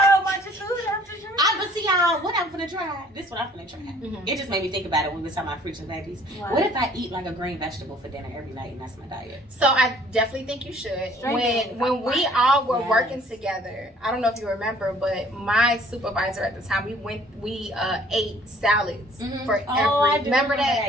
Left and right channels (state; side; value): normal; both; correlation 0.56